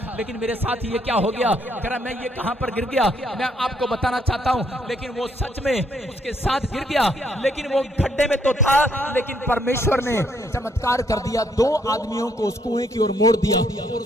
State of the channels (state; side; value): normal; both; correlation 0.71